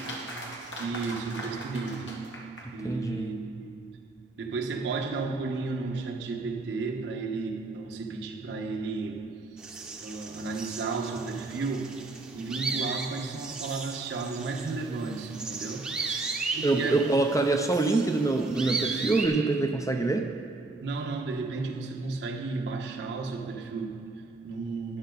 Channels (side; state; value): left; quieter; 3.1 dB